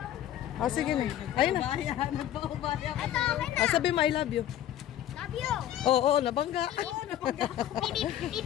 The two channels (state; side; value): quieter; right; 11.8 dB